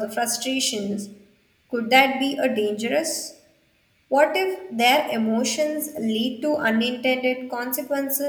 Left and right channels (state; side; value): identical; both; correlation 1.00